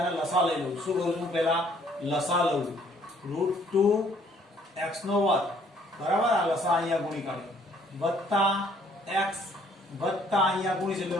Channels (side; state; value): both; normal; correlation 0.62